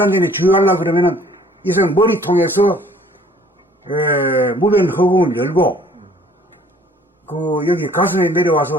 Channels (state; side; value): normal; both; correlation 0.56